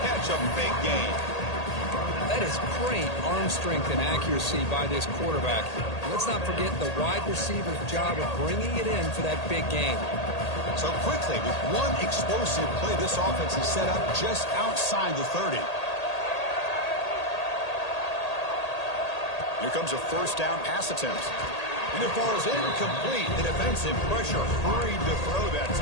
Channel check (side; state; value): right; late; 1.8 ms